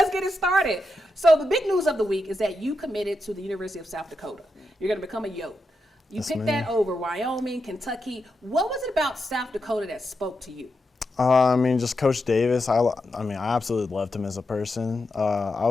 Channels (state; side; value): normal; both; correlation 0.86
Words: get it started. So the big news of the week is that you committed to the University of South Dakota. You're going to become a Yote. You picked that over Wyoming, Kentucky. What was it about South Dakota that spoke to you? Just Coach Davis. I absolutely loved him as a person. I